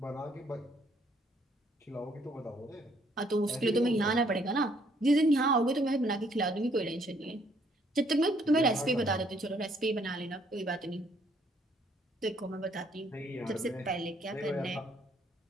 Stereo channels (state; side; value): normal; both; correlation 0.66